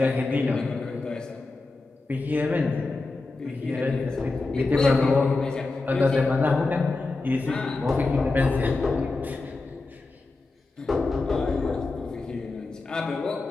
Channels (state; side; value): quieter; right; 3.4 dB